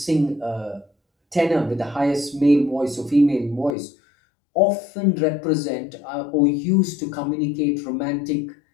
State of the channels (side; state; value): right; drops out; at 3.8 s